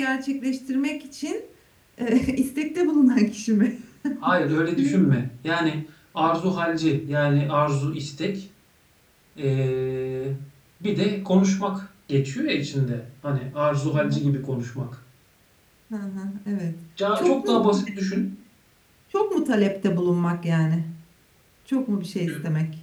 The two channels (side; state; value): both; identical; correlation 1.00